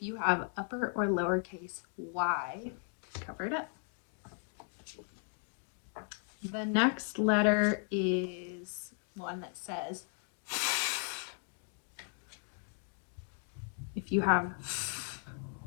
you have upper or lowercase y, cover it up. The next letter is one that says if you have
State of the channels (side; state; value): right; silent; 54 dB below the other